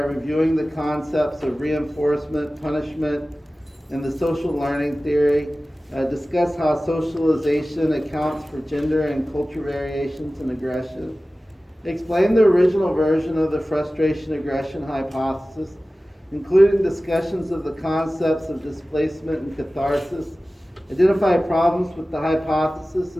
the concepts of reinforcement, punishment, and the social learning theory. Discuss how socialization accounts for gender and culture variations in aggression. Explain the original version of the frustration-aggression hypothesis, including discussions of the concepts of displacement and catharsis. Identify problems with the hypothesis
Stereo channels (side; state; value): both; normal; correlation 0.96